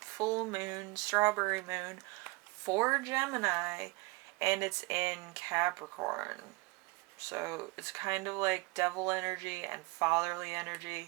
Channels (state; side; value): quieter; left; 25.2 dB